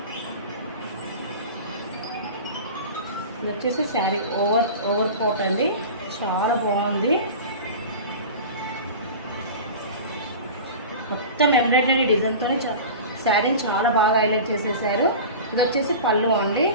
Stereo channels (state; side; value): inverted; both; correlation -0.33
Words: ఇది వచ్చేసి శారీ ఓవర్ కోట్ అండి. చాలా బాగుంది. మొత్తం ఎంబ్రాయిడరీ డిజైన్తో శారీని చాలా బాగా హైలైట్ చేసేసారు. ఇది వచ్చేసి పళ్ళు అండి.